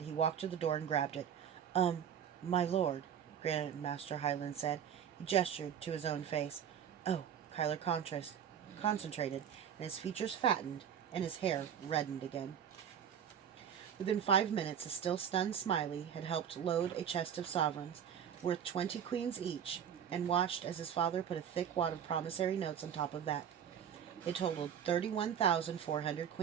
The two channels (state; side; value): quieter; left; 8.6 dB